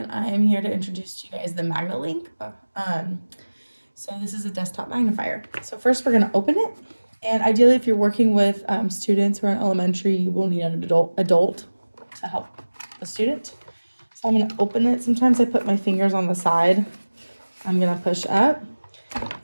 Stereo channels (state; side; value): inverted; both; correlation -1.00